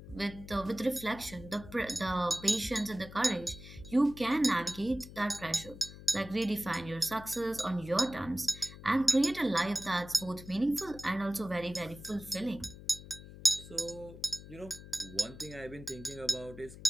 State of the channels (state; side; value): noise; left; hum, 15 dB below the sound